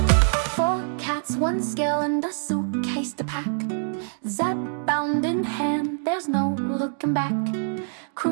One scale and a suitcase to pack. Zepbound in hand, there's no looking back.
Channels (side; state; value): left; silent; digital silence